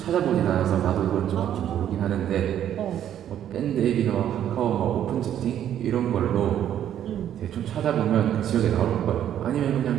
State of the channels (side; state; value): left; quieter; 10.5 dB